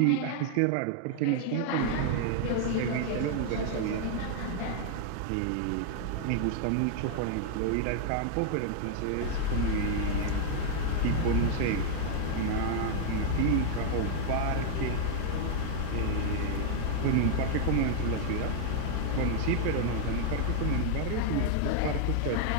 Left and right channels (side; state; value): both; different; correlation 0.00